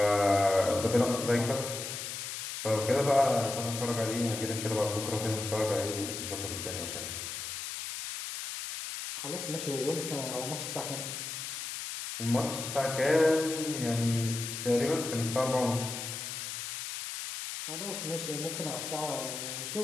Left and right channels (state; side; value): noise; left; hiss, 6 dB below the sound